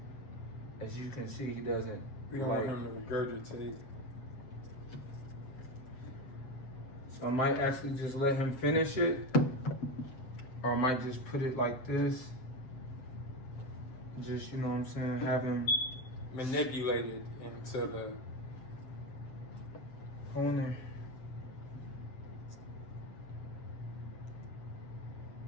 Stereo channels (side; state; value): right; late; 7.7 ms